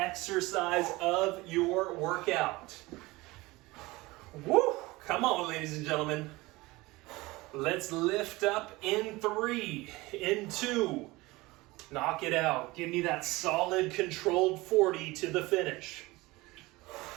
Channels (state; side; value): quieter; left; 21.2 dB